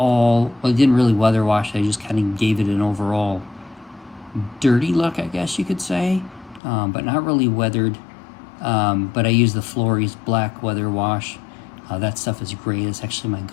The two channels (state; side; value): drops out; right; at 6.6 s